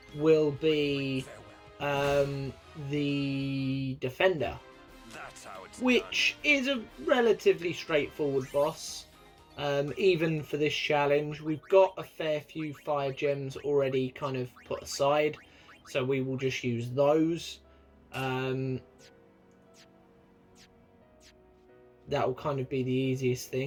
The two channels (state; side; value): identical; both; correlation 1.00